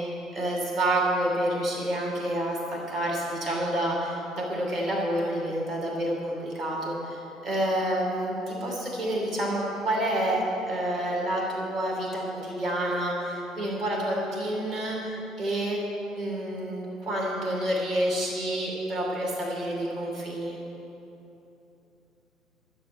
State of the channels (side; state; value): both; normal; correlation 0.66